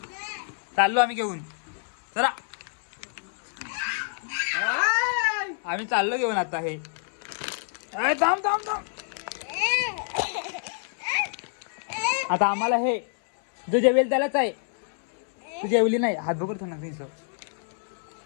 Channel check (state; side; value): silent; right; 60 dB below the other